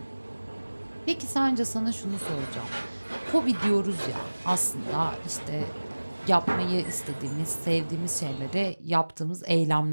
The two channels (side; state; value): both; inverted; correlation -1.00